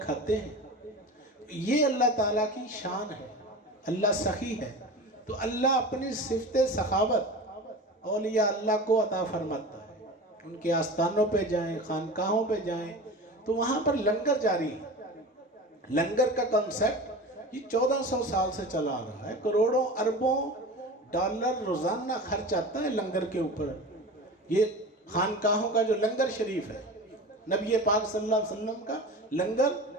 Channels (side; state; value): both; normal; correlation 0.32